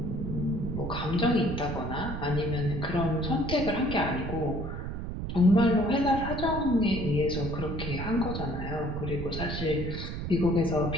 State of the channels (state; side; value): noise; right; rumble, 5 dB below the sound